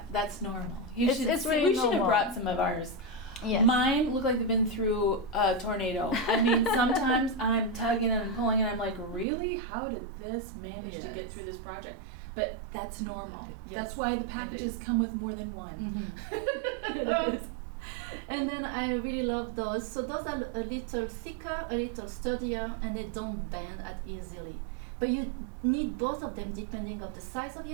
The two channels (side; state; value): left; drops out; at 9.2 s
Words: That's normal. It's really we should have brought some of ours. Yes. Mine look like they've been through a tornado. I mean, sometimes I'm tugging and pulling, and I'm like, really? How did this manage to get through this project? But that's normal. Yes. That's why the packages come with more than one. It is. And then I really love those. So those are a little thicker, a little sturdier, and they don't bend as easily. But you need both of them depending on the size of